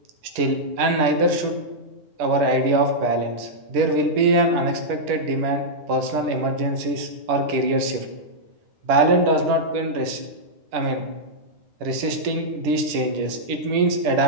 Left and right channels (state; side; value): late; left; 10 ms